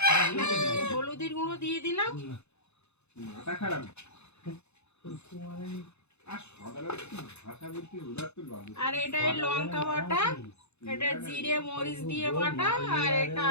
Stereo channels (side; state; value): right; late; 0.81 ms